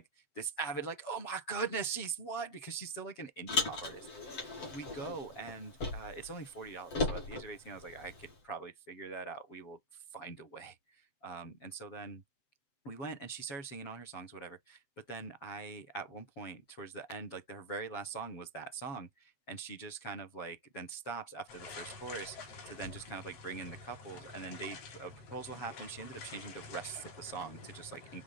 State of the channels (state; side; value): late; right; 7.7 ms